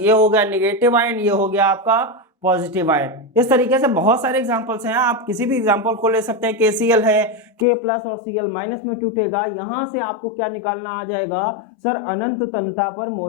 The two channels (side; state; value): right; drops out; at 7.7 s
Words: हो गया निगेटिव आयन, ये हो गया आपका पॉजिटिव आयन। इस तरीके से बहुत सारे एग्जांपल्स हैं, आप किसी भी एग्जांपल को ले सकते हैं। KCl है, K प्लस और Cl माइनस में टूटेगा। यहां से आपको क्या निकालना आ जाएगा सर, अनंत तनुता पर